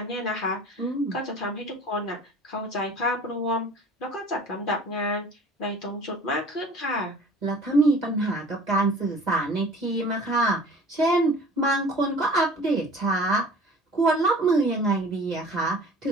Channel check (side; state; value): both; normal; correlation 0.46